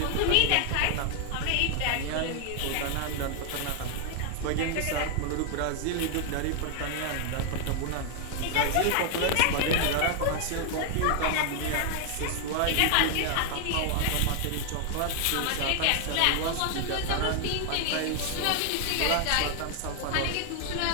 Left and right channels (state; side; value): different; both; correlation 0.00